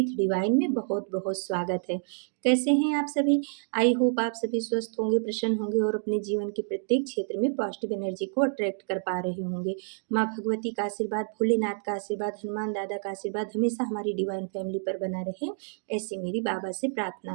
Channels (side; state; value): left; silent; digital silence